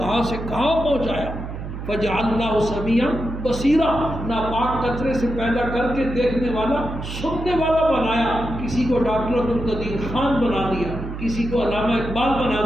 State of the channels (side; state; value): right; noise; hum, 8 dB below the sound